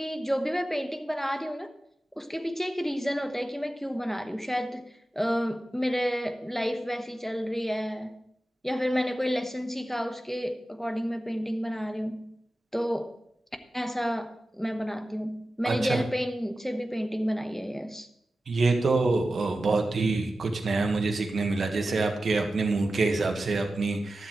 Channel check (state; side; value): normal; both; correlation 0.94